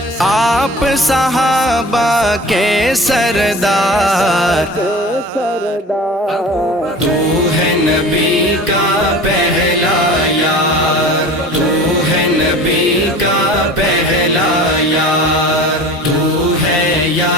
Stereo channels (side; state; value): both; normal; correlation 0.40